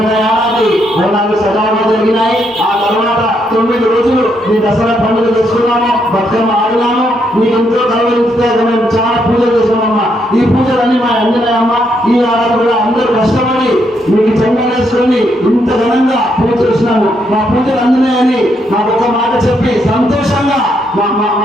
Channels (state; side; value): normal; both; correlation 0.76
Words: ఏడాది బోనాలు సజావుగా జరిగినాయి. ఆ తర్వాత 9 రోజులు నీ దసరా పండుగ చేసుకున్నాము, బతుకమ్మ ఆడినాము. నీకు ఎంతో గౌరవిస్తే మేము చాలా పూజలు చేసామమ్మా. ఈ పూజలన్నీ మా అంజనాయమ్మ ఈ ఏడాది కూడా అందరూ కష్టపడి మీకు చెంగలేసుకొని ఇంత ఘనంగా పూజ చేసినాము. మా పూజలు అంజనాయని మాకు ఒక మాట చెప్పి సంతోషంగా మా